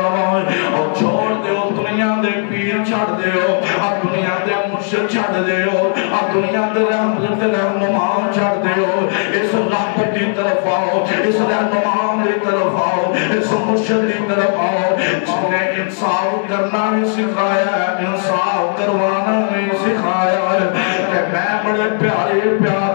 اور چھوڑ دے ہو دنیا دے پیر چھڑ دے ہو اب دنیا دے مرشد چھڑ دے ہو اب دنیا دے رحمت رہنما چھڑ دے ہو اس رحمت دی طرف آؤ اس رہنما دی طرف آؤ اس مرشد دی طرف آؤ جس نے انصاف کرنا بھی سکھایا ہے انصاف کروانا بھی سکھایا ہے کہ میں بڑے پیارے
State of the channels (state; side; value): silent; right; digital silence